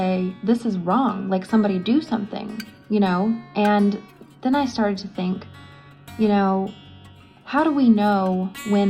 this is wrong, like somebody do something, And then I started to think, how do we know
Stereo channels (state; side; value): identical; both; correlation 1.00